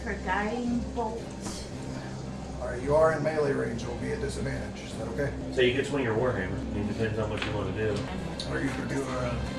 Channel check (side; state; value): both; identical; correlation 1.00